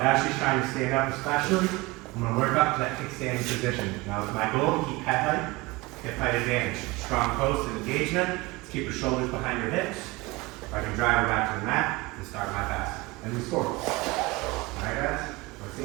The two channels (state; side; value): quieter; left; 22.9 dB